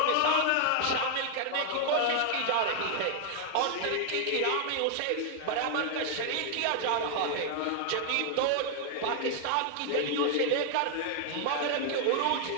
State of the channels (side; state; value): both; different; correlation 0.00